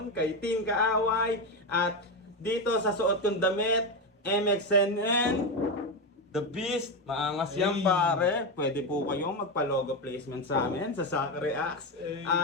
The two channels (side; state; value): both; normal; correlation 0.12